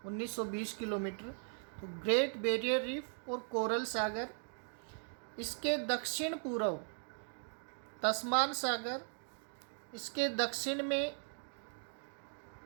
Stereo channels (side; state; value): left; silent; 52 dB below the other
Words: 1920 किलोमीटर, तो ग्रेट बैरियर रीफ और कोरल सागर, इसके दक्षिण पूर्व तस्मान सागर, इसके दक्षिण में